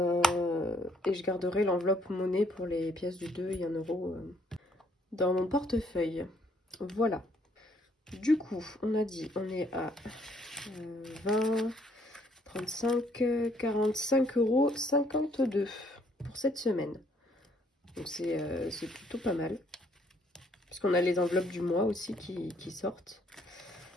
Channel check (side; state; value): both; normal; correlation 0.66